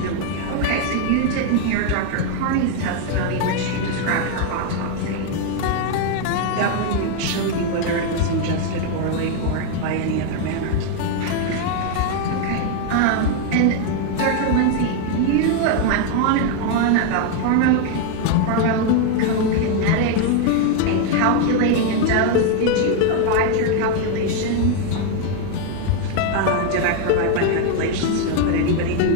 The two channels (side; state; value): both; different; correlation 0.01